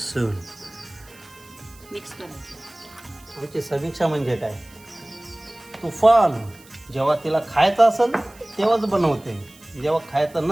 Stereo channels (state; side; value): noise; right; hiss, 25 dB below the sound